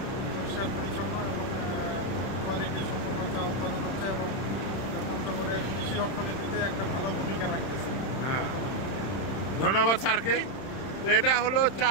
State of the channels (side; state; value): right; late; 31 ms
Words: পরিষ্কার পরিচ্ছন্ন এবং কোয়ালিটি সম্পন্ন চা উৎপাদন হচ্ছে এবং পঞ্চগড়ের কৃষি অর্থনীতিতে একটা ভালো ভূমিকা রাখতেছে বর্তমানে। ধন্যবাদ স্যারকে। তো এটা হলো চা।